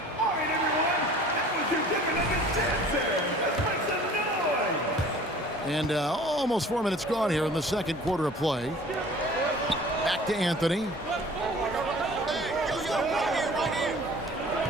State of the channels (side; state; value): both; normal; correlation 0.47